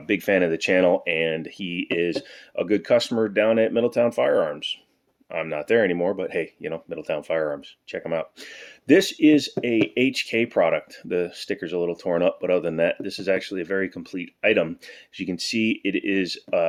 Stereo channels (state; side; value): identical; both; correlation 1.00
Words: big fan of the channel, and he is a good customer down at Middletown Firearms. I'm not there anymore, but hey, Middletown Firearms, check them out. This is a HK product. The sticker's a little torn up, but other than that, this is actually a very complete item. As you can see, it is